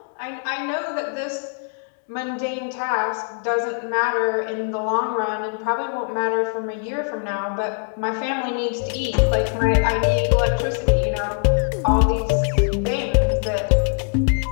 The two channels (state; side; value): silent; right; 64 dB below the other